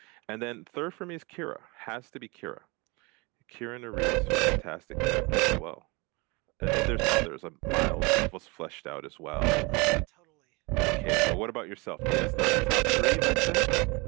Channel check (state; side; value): quieter; left; 27.3 dB